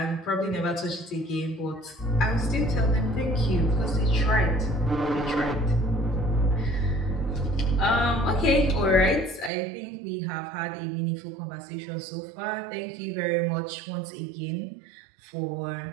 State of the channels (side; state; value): left; drops out; at 9.5 s